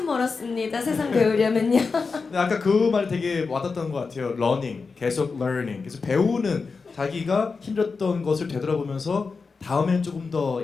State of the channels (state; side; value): quieter; right; 4.6 dB